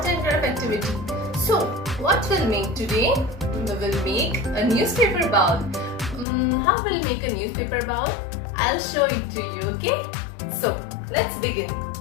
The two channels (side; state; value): right; drops out; at 6.2 s